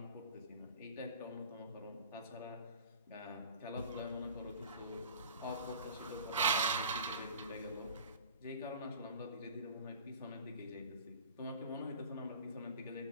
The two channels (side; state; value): both; inverted; correlation -0.41